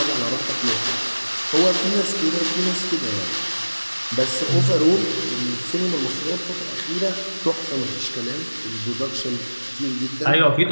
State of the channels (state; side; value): inverted; both; correlation -1.00